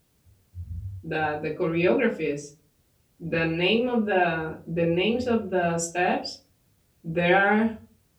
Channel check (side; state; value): both; identical; correlation 1.00